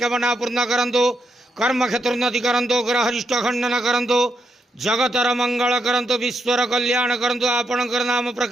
पूर्ण करंतु, कर्म क्षेत्र उन्नति करंतु, ग्रह अरिष्ट खंडन करंतु, जगतर मंगल करंतु, विश्वर कल्याण करंतु, आपणकर नाम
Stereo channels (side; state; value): both; normal; correlation 0.81